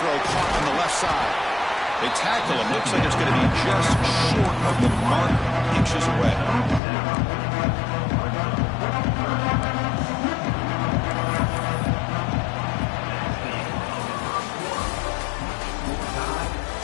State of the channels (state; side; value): drops out; right; at 6.8 s